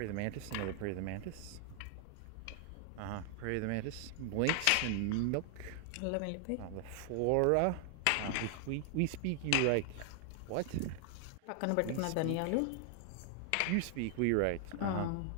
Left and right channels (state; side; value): different; both; correlation 0.00